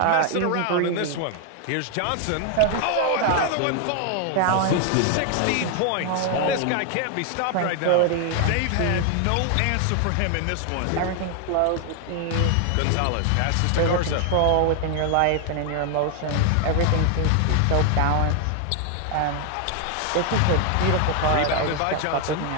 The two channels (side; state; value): both; different; correlation 0.00